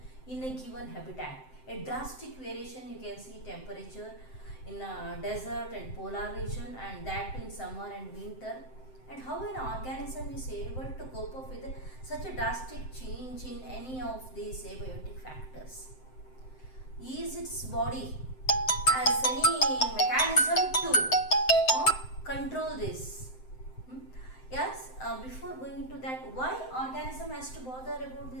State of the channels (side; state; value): right; late; 7.7 ms